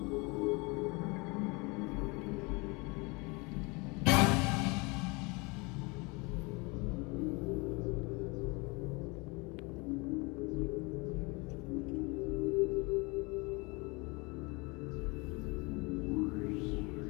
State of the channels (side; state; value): right; quieter; 27.7 dB